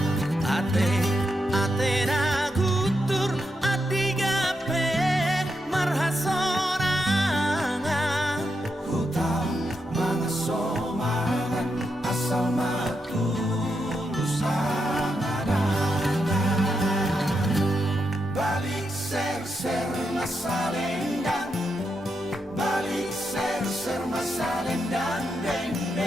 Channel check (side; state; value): both; normal; correlation 0.84